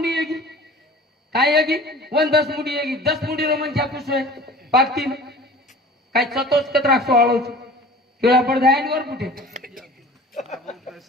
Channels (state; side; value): normal; both; correlation 0.43